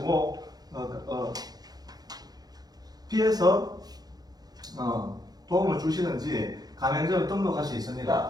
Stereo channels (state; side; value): late; left; 0.19 ms